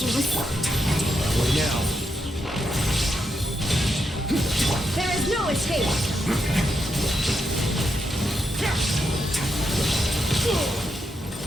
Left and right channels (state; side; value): normal; both; correlation 0.83